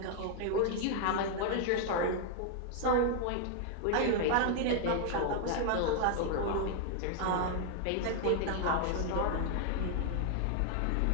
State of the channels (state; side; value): different; both; correlation 0.00